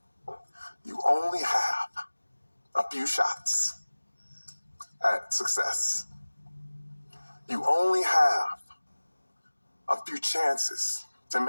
You only have a few shots at success. You only have a few chances to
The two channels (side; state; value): both; inverted; correlation -1.00